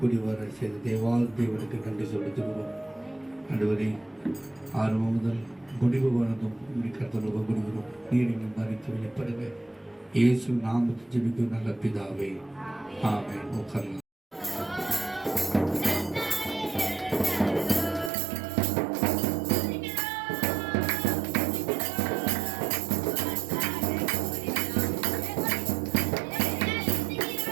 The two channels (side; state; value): left; drops out; at 18.1 s